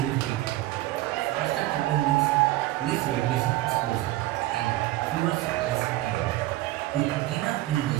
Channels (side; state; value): left; quieter; 16.6 dB